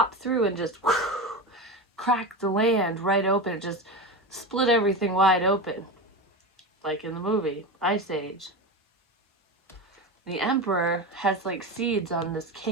through and just cracked the land right open. It just split everything wide open, like in the movie Ice Age. The Emperor has like seeds on this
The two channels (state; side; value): normal; both; correlation 0.22